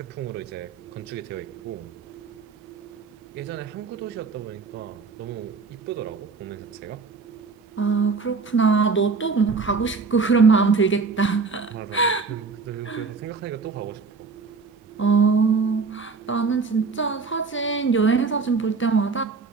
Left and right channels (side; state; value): left; quieter; 4.7 dB